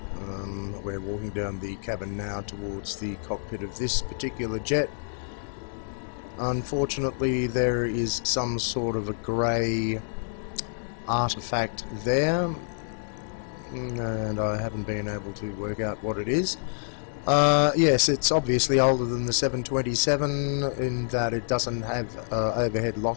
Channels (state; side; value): silent; right; digital silence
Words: We're walking down the cabin now towards the cockpit of this particular jet. Unfortunately, there is some sort of a grey artifact there, and I haven't been able to work out what it is. Yes, it's obviously older than the 727 in that it doesn't have overhead